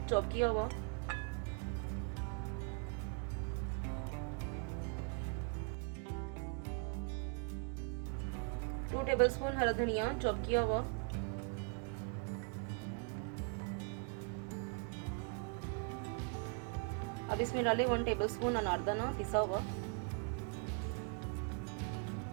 चॉप किया हुआ, 2 टेबलस्पून हरा धनिया चॉप किया हुआ, अब इसमें डालें 1 टेबलस्पून अनारदाना पिसा हुआ,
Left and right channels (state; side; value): quieter; left; 39.3 dB